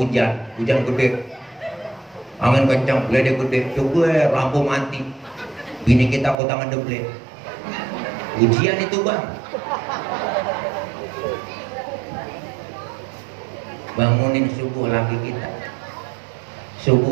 gede. Angin kencang, geledek gede, coba lampu mati. Bini kita kok tangan deble. Ujian itu bang. Bangunin subuh laki kita.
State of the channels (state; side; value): drops out; left; at 6.4 s